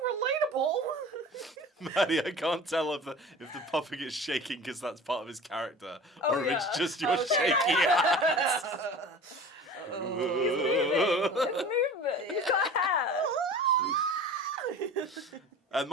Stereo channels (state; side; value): normal; both; correlation 0.39